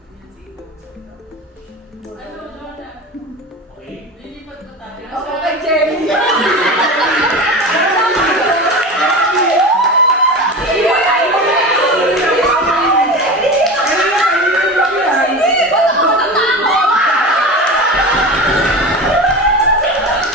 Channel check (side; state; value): both; normal; correlation 0.28